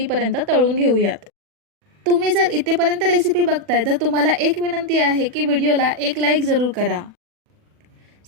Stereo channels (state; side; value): late; left; 40 ms